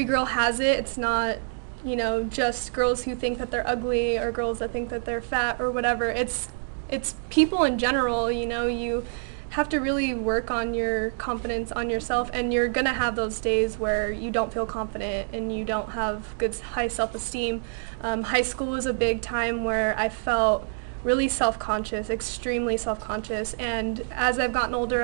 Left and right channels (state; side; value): silent; left; digital silence